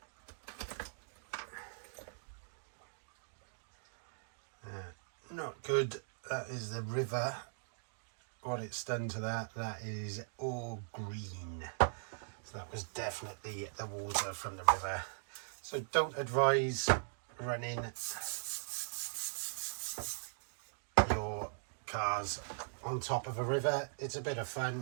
Not good. That is the river. What it's done to that, that is all green. So that was definitely the water from the river. So don't advise running your cars on top of a river. It's a bit of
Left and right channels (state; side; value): silent; left; digital silence